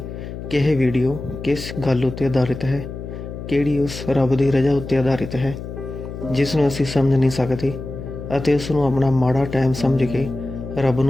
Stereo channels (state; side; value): noise; left; hum, 9 dB below the sound